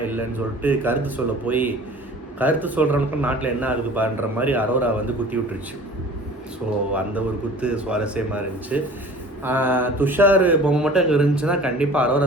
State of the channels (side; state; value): both; normal; correlation 0.44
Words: இல்லைன்னு சொல்லிட்டு கருத்து சொல்ல போய் கருத்து சொல்கிறவனுக்கும் நாட்டில் என்ன ஆகுது பாருன்ற மாதிரி அரோரா வந்து குத்தி விட்டுருச்சு. ஸோ அந்த ஒரு குத்து சுவாரஸ்யமாக இருந்துச்சு. துஷார் பொம்மை மட்டும் அங்கே இருந்துச்சுன்னா கண்டிப்பாக